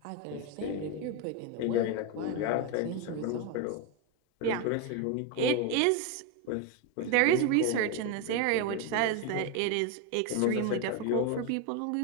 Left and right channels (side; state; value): both; different; correlation 0.02